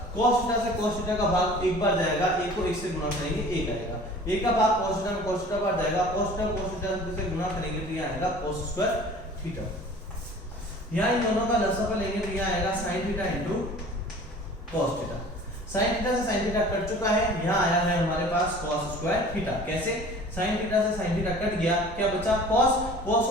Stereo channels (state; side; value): normal; both; correlation 0.45